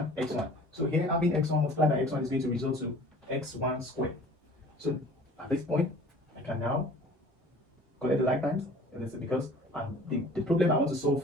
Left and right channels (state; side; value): normal; both; correlation 0.48